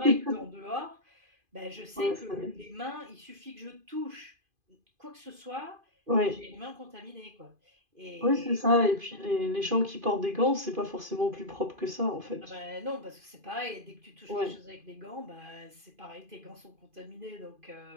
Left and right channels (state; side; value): late; left; 2.5 ms